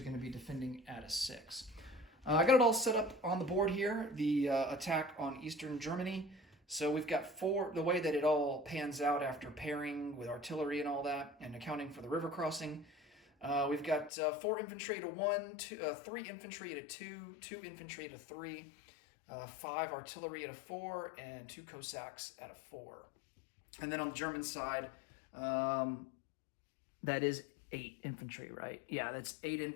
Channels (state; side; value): drops out; right; at 14.1 s